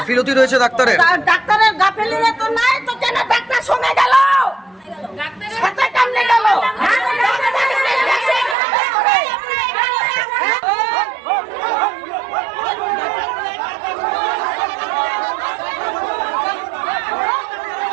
রয়েছে ডাক্তারের? ডাক্তারের গাফিলতি তো নাই তো, কেন ডাক্তার সঙ্গে গেল? সাথে কেমনে গেল?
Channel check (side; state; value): left; drops out; at 8.6 s